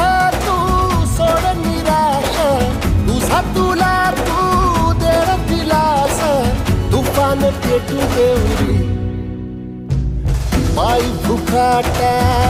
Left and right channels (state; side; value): identical; both; correlation 1.00